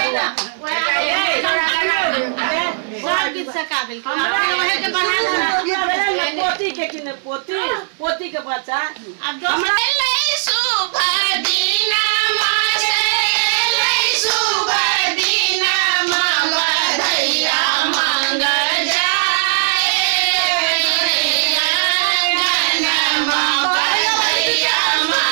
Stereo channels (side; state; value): left; silent; digital silence